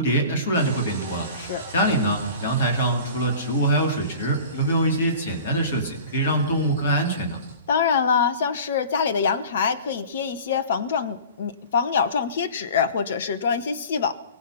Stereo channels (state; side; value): inverted; both; correlation -0.40